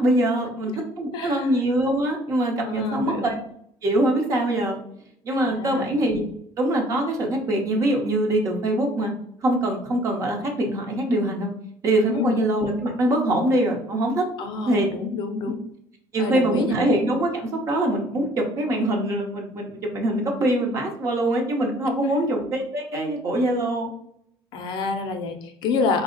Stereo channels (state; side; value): normal; both; correlation 0.56